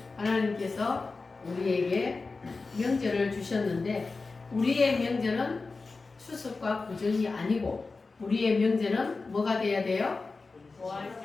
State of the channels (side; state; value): right; quieter; 3.9 dB